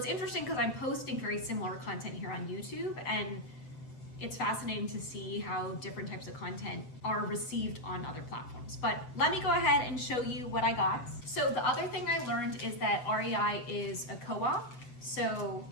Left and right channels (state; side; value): late; right; 7.9 ms